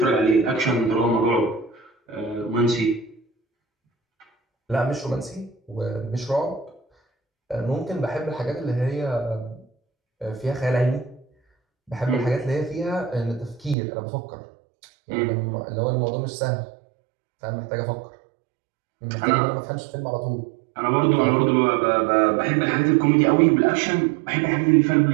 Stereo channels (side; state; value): left; drops out; at 13.8 s